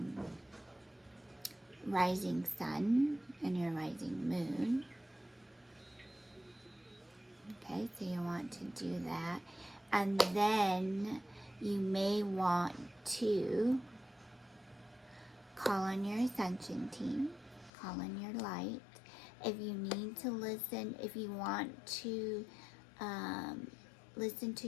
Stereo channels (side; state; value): right; drops out; at 17.7 s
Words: rising sun and your rising moon. Okay, so you want to do that. And then you may want to call on your ascension team, call on your light. If you need to listen, if you want to listen